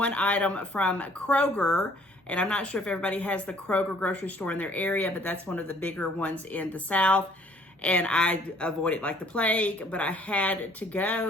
item from KROGER, and I'm not sure if everybody has the KROGER grocery store in their area, but that's one of the bigger ones in the South. And I avoid it like the plague, but I had to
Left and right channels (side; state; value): both; normal; correlation 0.59